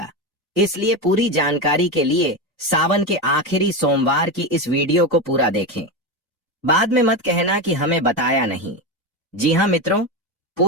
इसलिए पूरी जानकारी के लिए सावन के आखिरी सोमवार की इस वीडियो को पूरा देखें। बाद में मत कहना कि हमें बताया नहीं। जी हाँ मित्रों,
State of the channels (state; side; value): normal; both; correlation 0.16